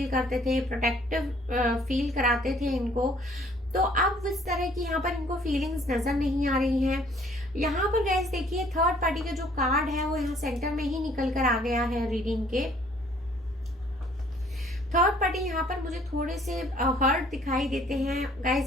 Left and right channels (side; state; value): both; normal; correlation 0.59